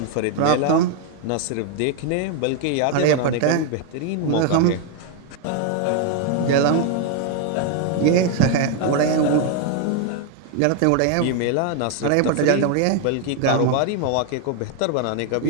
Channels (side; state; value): both; different; correlation 0.01